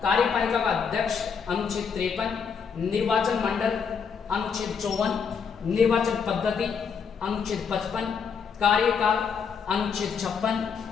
कार्यपालिका का अध्यक्ष अनुच्छेद 53, निर्वाचन मंडल अनुच्छेद 54, निर्वाचन पद्धति अनुच्छेद 55, कार्यकाल अनुच्छेद 56,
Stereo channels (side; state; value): right; quieter; 6.3 dB